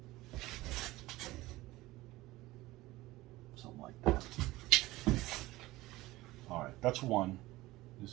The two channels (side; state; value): left; quieter; 18.6 dB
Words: Something like that. Alright, that's 1.